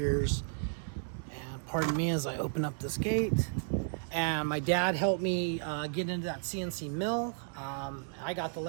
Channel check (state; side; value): silent; left; digital silence